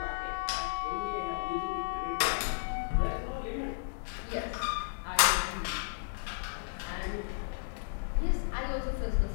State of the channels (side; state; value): right; silent; digital silence